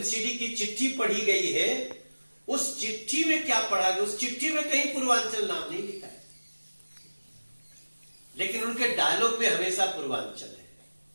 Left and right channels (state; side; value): inverted; both; correlation -1.00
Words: की चिट्ठी पढ़ी गई है, उस चिट्ठी में क्या पढ़ा गया? उस चिट्ठी में कहीं पूर्वांचल नाम नहीं लिखा है, लेकिन उनके डायलॉग में हमेशा पूर्वांचल है।